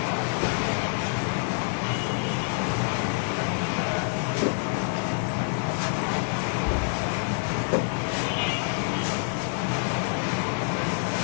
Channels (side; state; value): right; silent; 60 dB below the other